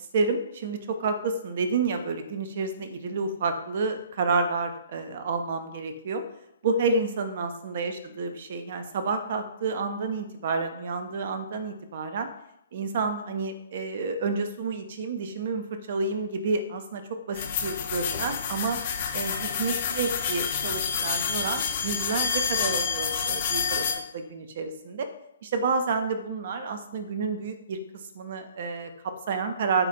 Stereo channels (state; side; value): inverted; both; correlation -0.52